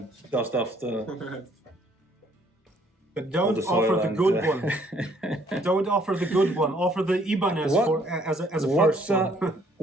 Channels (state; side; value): normal; both; correlation 0.63